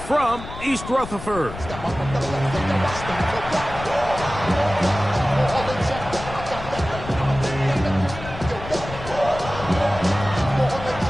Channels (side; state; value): left; noise; rumble, 11 dB below the sound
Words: from East Rutherford.